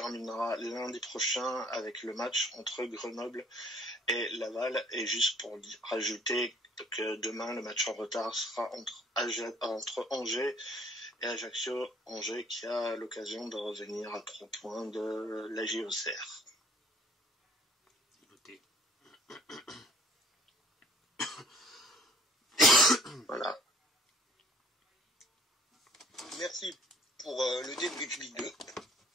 lundi prochain avec le match entre Grenoble et Laval. Et juste pour rajouter que demain, le match en retard sera entre Angers et Ajaccio, Angers qui a l'occasion de revenir à 3 points de la JOCR. Noté. Voilà. Merci pour le débrief Ligue 2.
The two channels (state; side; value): normal; both; correlation 0.58